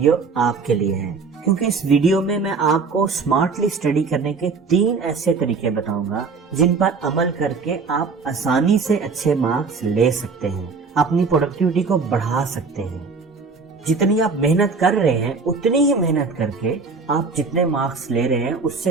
आपके लिए है क्योंकि इस वीडियो में मैं आपको स्मार्टली स्टडी करने के 3 ऐसे तरीके बताऊंगा जिन पर अमल करके आप आसानी से अच्छे मार्क्स ले सकते हैं, अपनी प्रोडक्टिविटी को बढ़ा सकते हैं। जितनी आप मेहनत कर रहे हैं उतनी ही मेहनत करके आप जितने मार्क्स ले रहे हैं उससे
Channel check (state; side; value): quieter; left; 4.7 dB